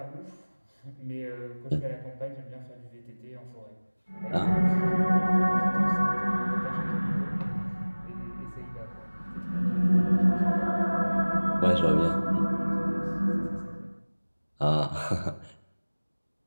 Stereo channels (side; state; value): both; inverted; correlation -1.00